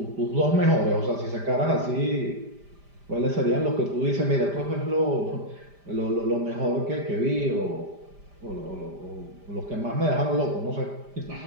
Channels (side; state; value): left; late; 5.0 ms